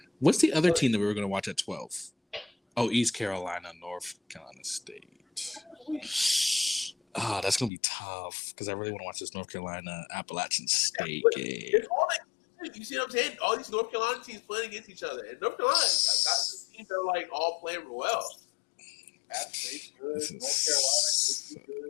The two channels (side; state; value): right; drops out; at 7.7 s